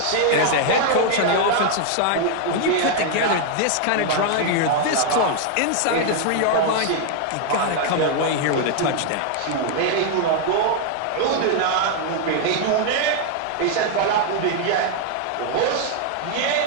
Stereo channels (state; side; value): different; both; correlation 0.00